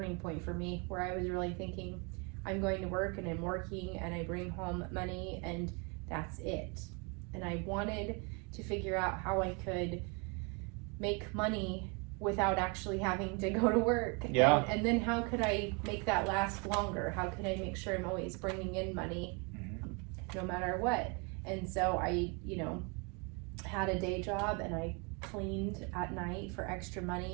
point for me, where I was really thinking, I'm going to work and I'm working and I bring home money and that's it. And I wanted to figure out how I could make money without actually having to go to work. Yeah. And then how could I make that last longer? How could I make sure I'm always bringing in money no matter what? And so I, had a day job and I cleaned at night for extra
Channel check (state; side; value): quieter; left; 32.1 dB